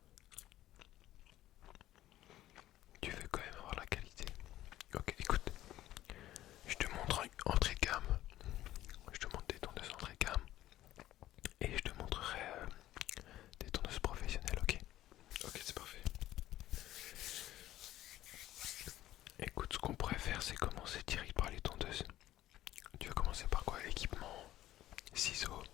Tu veux quand même avoir la qualité. Ok, écoute, je te montre entrée de gamme. Je te montre des tondeuses entrée de gamme. Et je te montrerai des tondeuses professionnelles, ok? Ok, c'est parfait. Écoute, ce qu'on pourrait faire, c'est commencer direct par les tondeuses. Tu veux commencer par quoi? Équipement, ciseaux.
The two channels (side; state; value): right; quieter; 14.2 dB